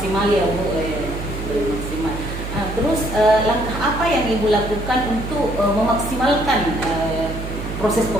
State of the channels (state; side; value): noise; right; hum, 7 dB below the sound